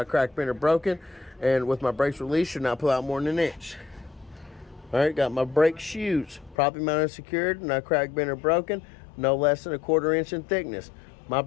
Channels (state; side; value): drops out; right; at 6.6 s